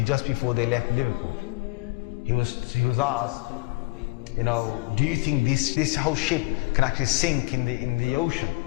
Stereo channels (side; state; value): right; quieter; 23.6 dB